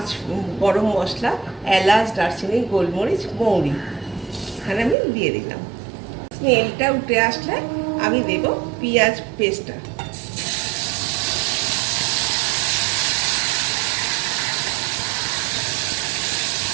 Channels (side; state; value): left; drops out; at 5.0 s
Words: গরম মশলা, এলাচ, দারচিনি, গোলমরিচ, মৌরি এখানে আমি দিয়ে দিলাম। স্মেলটা উঠে আসলে আমি দেব পেঁয়াজ পেস্টটা।